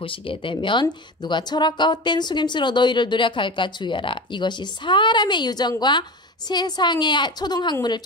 되면 누가 철학과 헛된 속임수로 너희를 노력할까 주의하라. 이것이 사람의 유전과 세상의 초등학문을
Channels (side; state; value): both; normal; correlation 0.28